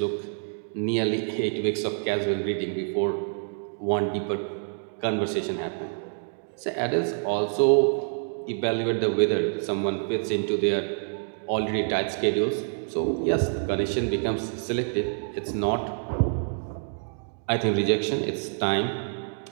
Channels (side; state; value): left; silent; digital silence